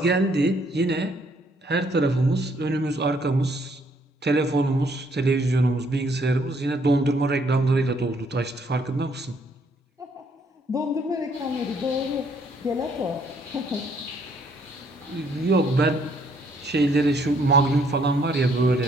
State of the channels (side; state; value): both; normal; correlation 0.67